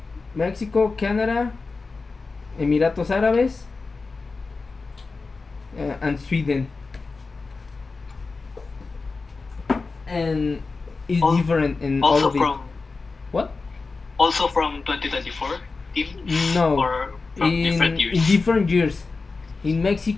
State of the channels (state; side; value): quieter; right; 4.1 dB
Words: Mexico, Canada, Emiratos Árabes, and Sweden, and it's Al- different in all Also of it. from What? 2024 teams No, or from different in years? different years. In